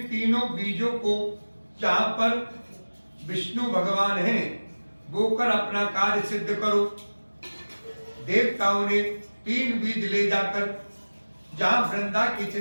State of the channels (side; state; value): both; inverted; correlation -1.00